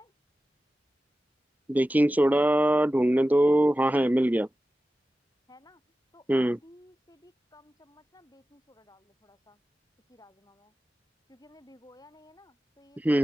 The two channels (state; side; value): normal; both; correlation 0.94